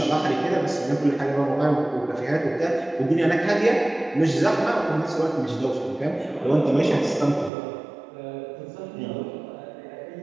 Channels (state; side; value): drops out; left; at 7.5 s